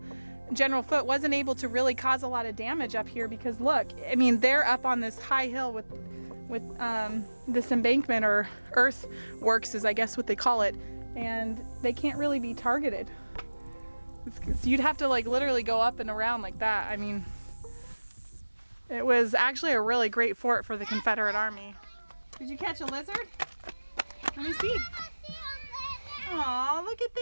General Foote wasn't able to really cause a lot of damage up here, because look, I mean, they're up on this high hill with this embankment, or earthworks is I guess what they call it, and they can't really be targeted. You'd have to like literally go up and around like that. I mean, it was actually a really great fort for the Confederate Army. Did you catch a lizard? Let me see. Aw, look at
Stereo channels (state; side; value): inverted; both; correlation -1.00